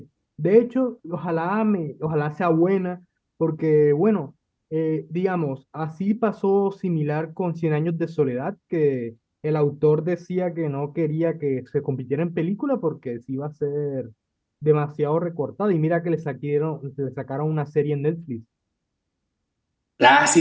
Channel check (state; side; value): identical; both; correlation 1.00